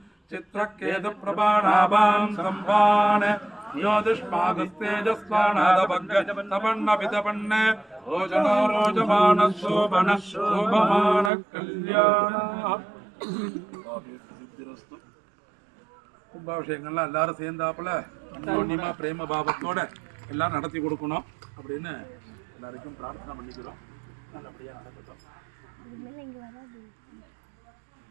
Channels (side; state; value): left; drops out; at 11.3 s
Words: चित्रकेतुप्रभाणाभां सम्भान् യോതിഷ്മാകസ്തേജസ്വാണാദപന്ന ഓജനോ രോജമാന ശോഭന ശോഭമാന കല്യാണ. கும்பாபிஷேகங்கள்லாம் எல்லாரும் சேர்ந்தாப்புல அன்யோன்யமா பிரேம பாவத்தோட எல்லாம் நடத்தி கொடுக்கணும் அப்படின்னு எல்லாருக்கும் பிரார்த்தனை பண்ணிக்கிறோம். நல்லபடியா நடக்கட்டும்.